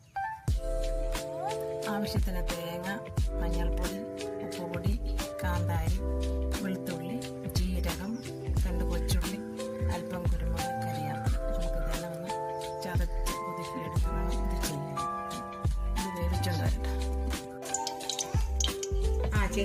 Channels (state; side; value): identical; both; correlation 1.00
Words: ആവശ്യത്തിന് തേങ്ങ, മഞ്ഞൾപ്പൊടി, ഉപ്പുപൊടി, കാന്താരി, വെളുത്തുള്ളി, ജീരകം, 2 കൊച്ചുള്ളി, അല്പം കുരുമുളക്, കരിയാപ്പില. നമുക്കിതെല്ലാം ഒന്ന് ചതച്ച് കുതിർത്തിയെടുക്കണം. ഇത് ചെയ്യാം. ഇത് വേവിച്ചുകൊണ്ട് വരട്ടെ.